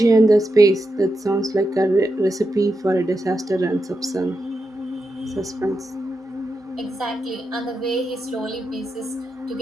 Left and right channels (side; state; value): both; normal; correlation 0.87